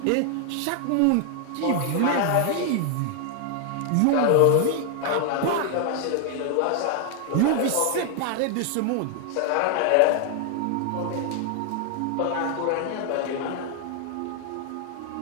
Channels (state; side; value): different; both; correlation 0.00